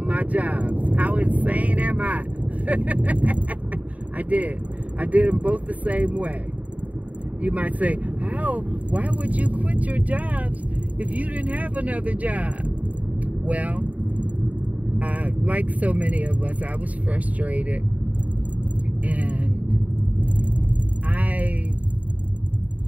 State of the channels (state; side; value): late; left; 0.070 ms